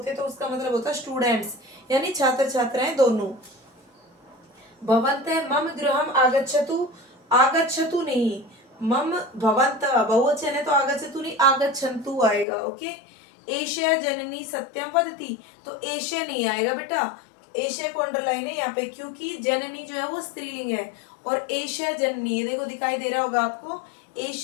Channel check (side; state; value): right; drops out; at 12.5 s